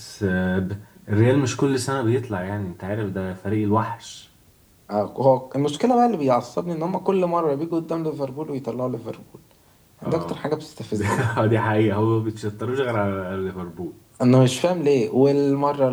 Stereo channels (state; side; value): identical; both; correlation 1.00